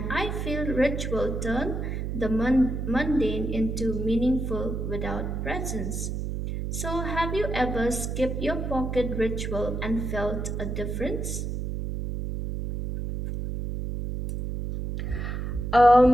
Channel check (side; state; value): right; noise; hum, 3 dB below the sound